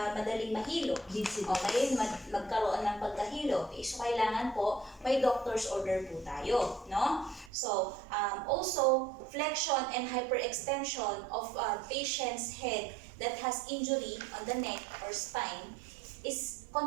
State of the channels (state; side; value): drops out; left; at 7.5 s